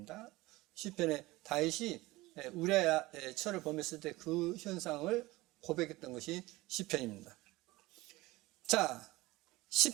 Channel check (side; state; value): left; quieter; 20.1 dB